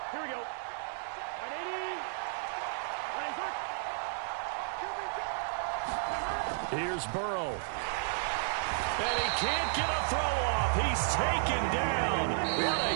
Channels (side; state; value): left; silent; digital silence